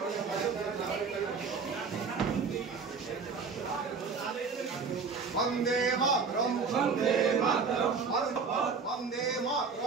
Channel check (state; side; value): quieter; left; 5.1 dB